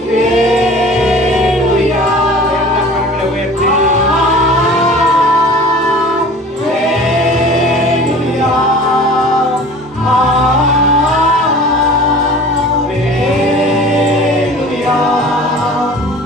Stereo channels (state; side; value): normal; both; correlation 0.43